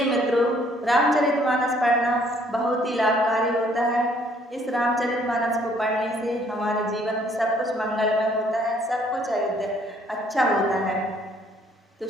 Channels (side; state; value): both; normal; correlation 0.63